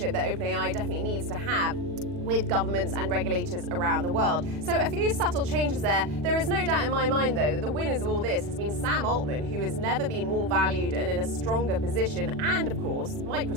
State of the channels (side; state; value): left; late; 40 ms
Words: that OpenAI definitely needs to have with governments and regulators around the world. So a few subtle changes there. There is no doubt in my mind, though, that the winners of all this has been Sam Altman, who has never been more valued and in a stronger position, and of course,